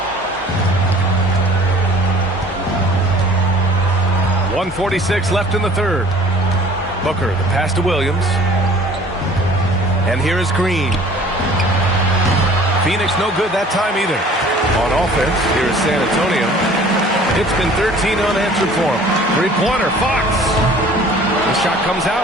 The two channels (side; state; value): both; normal; correlation 0.50